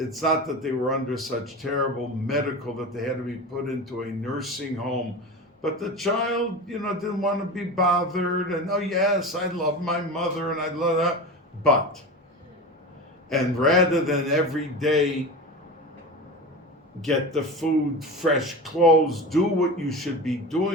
not that they were under such terrible medical that they had to be put into a nursing home, but the child, didn't want to be bothered, and oh yes, I love my mother, and I love that, but, and rather than every day get the food, fresh clothes, do what you should be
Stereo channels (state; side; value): normal; both; correlation 0.28